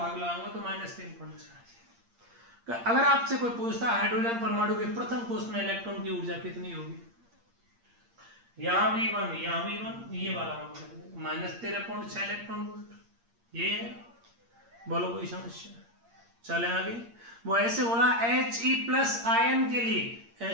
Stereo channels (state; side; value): late; left; 8.6 ms